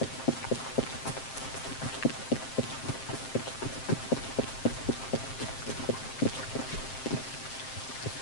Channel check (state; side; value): late; right; 7.6 ms